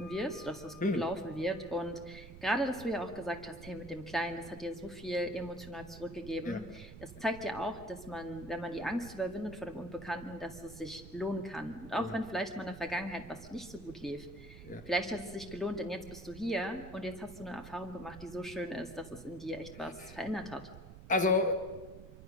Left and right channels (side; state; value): right; noise; rumble, 14 dB below the sound